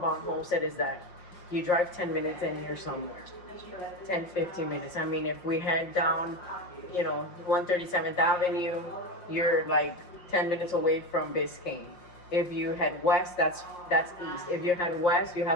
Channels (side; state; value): right; late; 5.6 ms